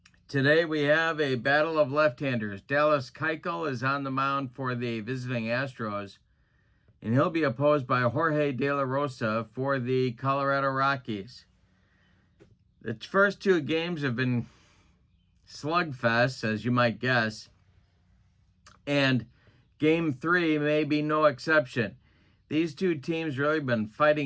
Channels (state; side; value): identical; both; correlation 1.00